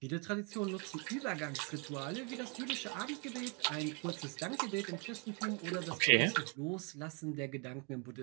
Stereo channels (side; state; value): left; quieter; 33.7 dB